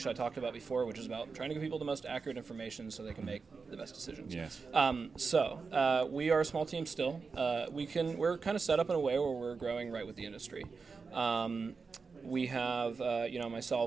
I talked about before, which is about trying to give people the most accurate information so they can make the best decisions. Yes. So we are a small team still. We're kind of set up in a way where we're growing right with the industry. We have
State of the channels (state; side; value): quieter; left; 4.8 dB